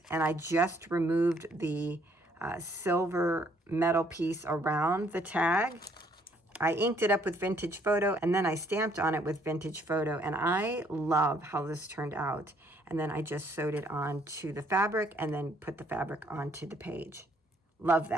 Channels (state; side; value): normal; both; correlation 0.65